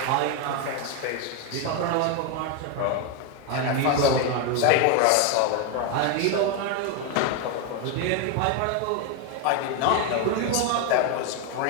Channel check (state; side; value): different; both; correlation 0.02